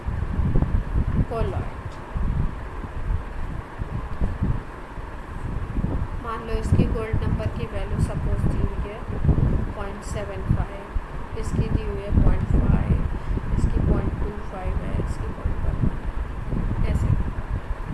colloid. मान लो इसकी गोल्ड नंबर की वैल्यू सपोज दी हुई है 0.75, इसकी दी हुई है 0.5, इसकी 0.25 है, इसकी 0.1 ऐसे।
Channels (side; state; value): both; identical; correlation 1.00